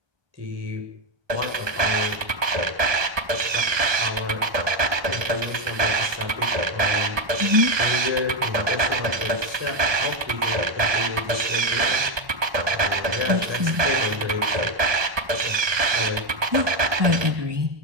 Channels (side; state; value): left; late; 1.2 ms